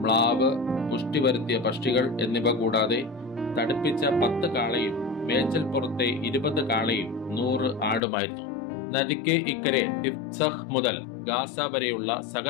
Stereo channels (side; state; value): right; drops out; at 8.0 s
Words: മ്ലാവ്, പുഷ്ടി വരുത്തിയ പക്ഷികൾ എന്നിവ കൂടാതെ തടിപ്പിച്ച 10 കാളയും മേച്ചൽ പുറത്തെ 20 കാളയും 100 ആടുമായിരുന്നു. നദിക്ക് ഇക്കരെ ടിഫ്സഹ് മുതൽ ഗാസ വരെയുള്ള